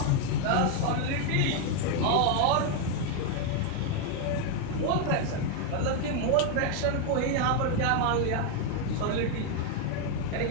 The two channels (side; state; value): both; different; correlation 0.01